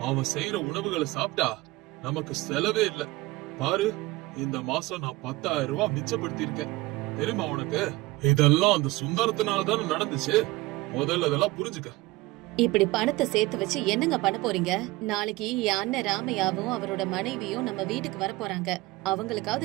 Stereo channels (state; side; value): quieter; left; 20.4 dB